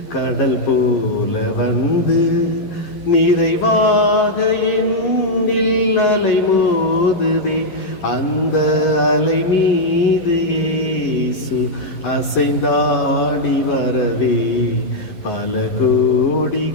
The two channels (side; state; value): right; late; 11 ms